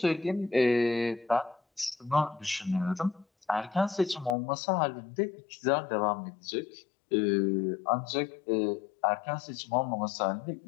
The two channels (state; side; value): drops out; right; at 4.4 s